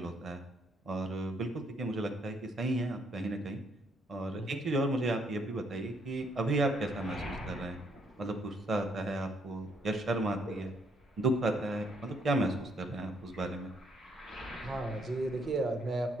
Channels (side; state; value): both; normal; correlation 0.71